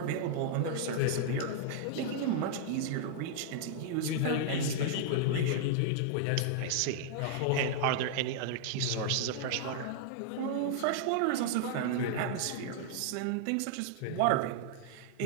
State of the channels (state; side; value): different; both; correlation -0.01